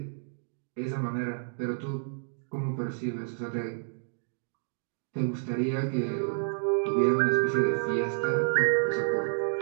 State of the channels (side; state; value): left; silent; digital silence